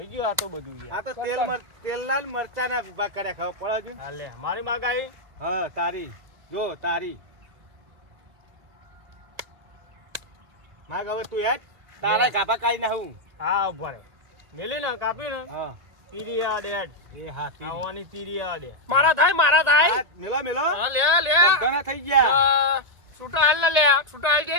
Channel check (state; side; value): late; left; 2.1 ms